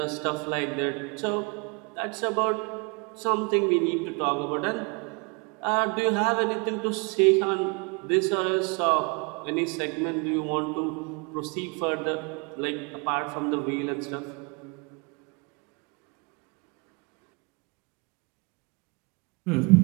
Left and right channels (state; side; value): quieter; left; 31.4 dB